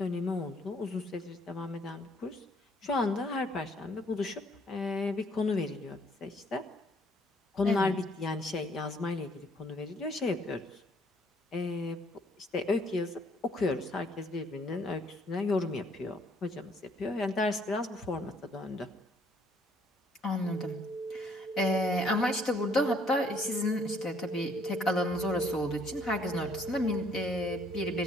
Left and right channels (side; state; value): both; normal; correlation 0.65